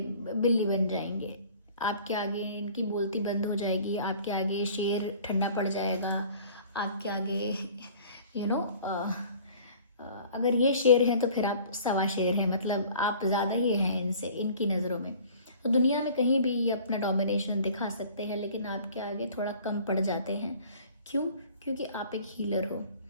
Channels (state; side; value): inverted; both; correlation -0.49